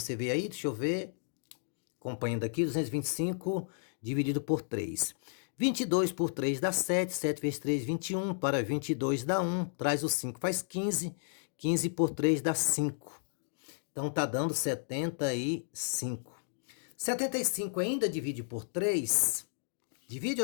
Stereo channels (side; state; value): right; silent; digital silence